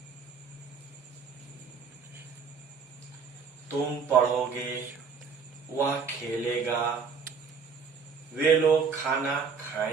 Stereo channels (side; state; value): left; quieter; 5.7 dB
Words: तुम पढ़ोगे, वह खेलेगा, वे लोग खाना